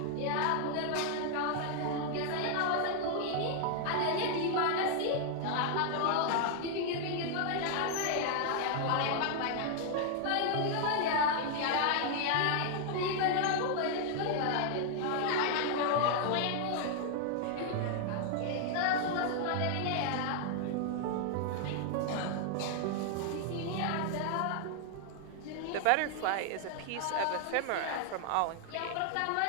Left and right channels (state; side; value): different; both; correlation 0.00